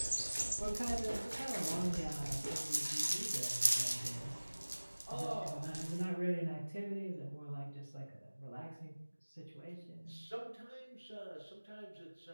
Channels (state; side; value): inverted; both; correlation -1.00